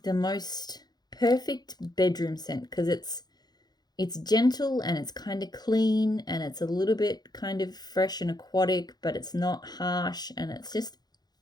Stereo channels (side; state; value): right; late; 0.19 ms